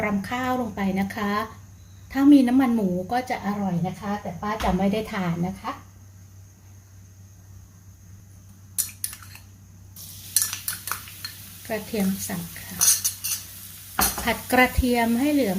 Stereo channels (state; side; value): identical; both; correlation 1.00